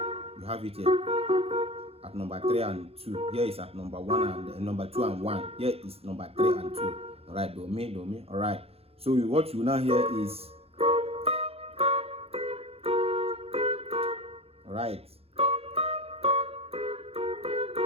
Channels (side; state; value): left; late; 0.29 ms